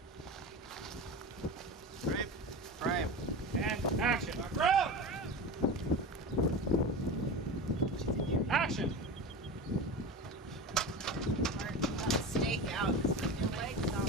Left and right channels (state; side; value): normal; both; correlation 0.28